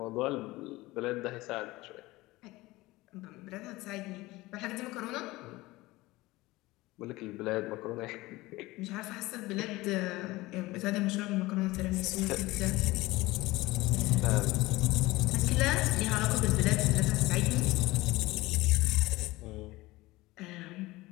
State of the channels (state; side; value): quieter; right; 19.8 dB